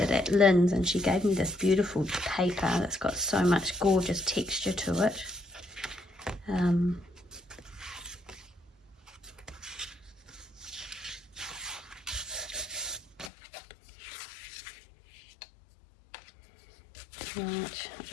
it at Lynn's and she gave me this beautiful paper that's got so much gorgeous texture to it. Right, I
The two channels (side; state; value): right; drops out; at 13.3 s